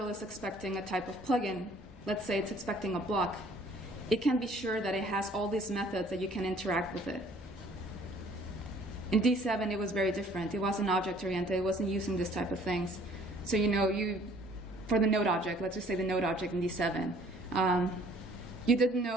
is expecting a type of plugin, let's say it's expecting a block, it can be sure that it has all these methods that you can interact with it. In D7, it was very different. It wasn't object-oriented. It wasn't using this type of things. So for the node object, let's just say the node object in D7, you didn't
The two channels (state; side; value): normal; both; correlation 0.56